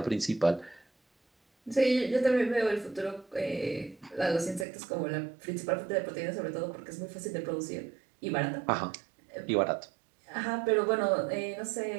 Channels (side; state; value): left; drops out; at 4.7 s